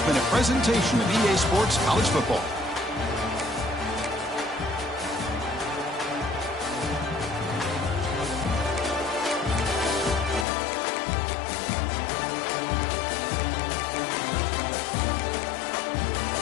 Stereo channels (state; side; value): drops out; right; at 10.5 s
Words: been a presentation of EA Sports College Football.